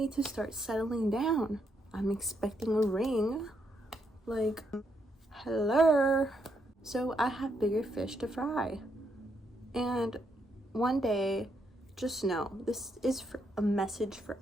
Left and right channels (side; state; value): both; normal; correlation 0.77